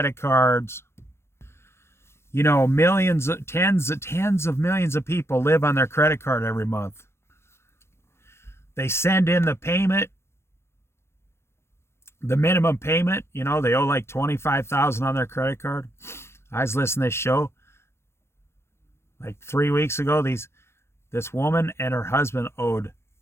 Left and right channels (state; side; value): late; right; 0.12 ms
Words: cards. You know, millions, tens of millions of people live on their credit card every month. They send in the payment. The minimum payment, you know, they owe like $25,000 on their credit card. I was listening to this show like 3 weeks ago. This woman and her husband owed